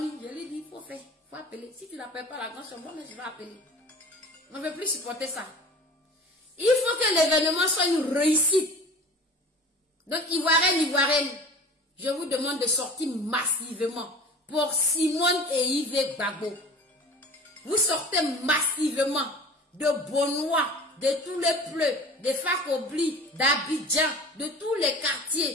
je lui dis, il faut faire, il faut appeler. Si tu n'appelles pas la grande chambre, moi je vais appeler. On ne veut plus supporter ça. Il faut que l'événement soit une réussite. Donc, Ivoirienne, je vous demande de sortir massivement pour Simone et Yves Gbagbo. Vous sortez massivement de Bonois, de tous les pleux, de Fakobli, d'Abidjan, de tous les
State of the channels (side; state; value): both; normal; correlation 0.39